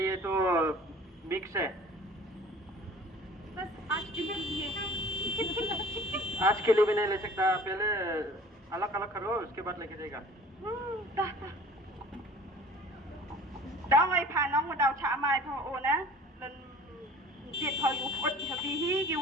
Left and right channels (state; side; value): normal; both; correlation 0.46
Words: तो मिक्स है बस आज के लिए आज के लिए भी नहीं ले सकता पहले अलग अलग करो उसके बाद लेके जाएगा đó ai phá nóng mà đào chả mai thôi ô nè lần diệt thôi u phốt hợp vì hí